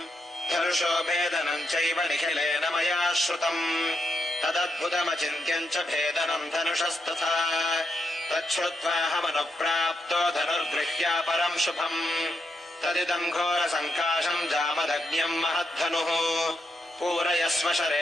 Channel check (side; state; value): both; normal; correlation 0.82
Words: धनुषो भेदनम् चैव निखिलेन मया श्रुतम् तदद्भुतमचिन्त्यम् च भेदनम् धनुषस्तथा तच्छ्रुत्वाहमनुप्राप्तो धनुर्गृह्या परम् शुभम् तदिदम् घोरसङ्काशम् जामदग्न्यम् महद्धनुः पूरयस्व